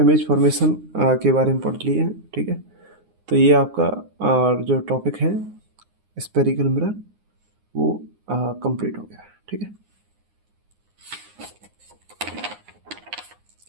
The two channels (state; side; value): late; left; 9.7 ms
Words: फॉर्मेशन के बारे में पढ़ लिए हैं, ठीक है। तो ये आपका जो टॉपिक है स्फेरिकल मिरर वो कंप्लीट हो गया है, ठीक है,